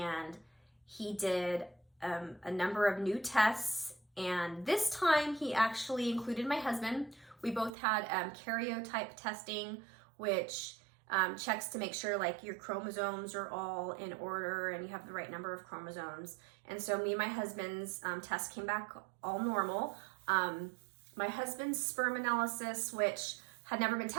he did a number of new tests. And this time he actually included my husband. We both had karyotype testing, which checks to make sure like your chromosomes are all in order and you have the right number of chromosomes. And so me and my husband's test came back all normal. My husband's sperm analysis, which had never been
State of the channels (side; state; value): left; drops out; at 7.7 s